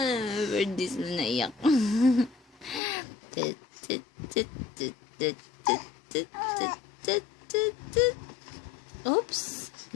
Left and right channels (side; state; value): right; drops out; at 2.8 s